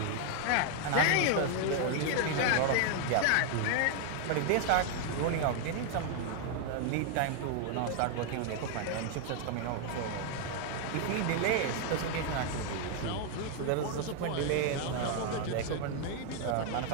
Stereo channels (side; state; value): both; different; correlation 0.00